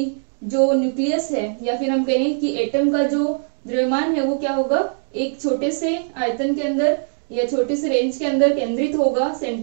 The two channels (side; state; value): left; silent; digital silence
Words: जो न्यूक्लियस है या फिर हम कहें कि एटम का जो द्रव्यमान है वो क्या होगा, एक छोटे से आयतन के अंदर या छोटे से रेंज के अंदर केंद्रित होगा,